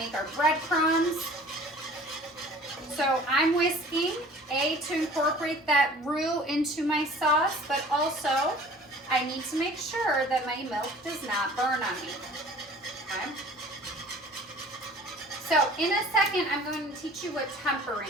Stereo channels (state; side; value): normal; both; correlation 0.47